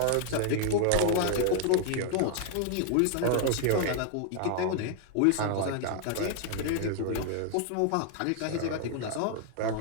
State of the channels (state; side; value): different; both; correlation 0.00